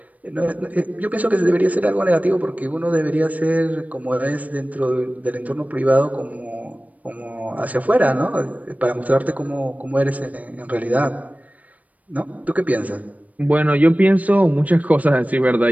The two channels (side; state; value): left; late; 0.072 ms